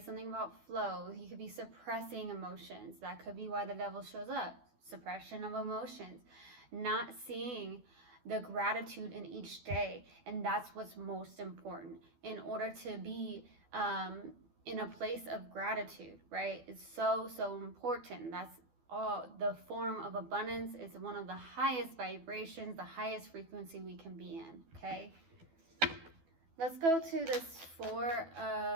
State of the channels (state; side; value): late; left; 12 ms